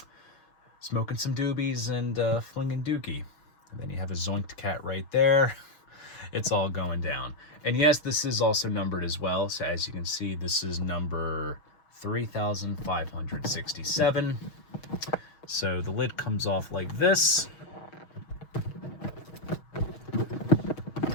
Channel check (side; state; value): right; late; 6.4 ms